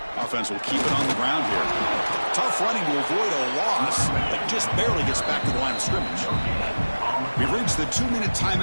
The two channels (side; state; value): both; inverted; correlation -1.00